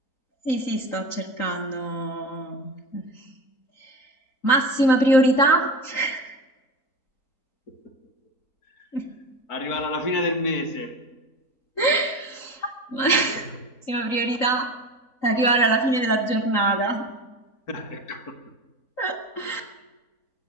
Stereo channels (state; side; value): late; right; 3.8 ms